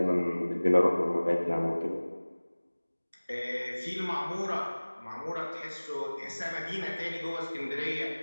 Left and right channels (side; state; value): both; inverted; correlation -1.00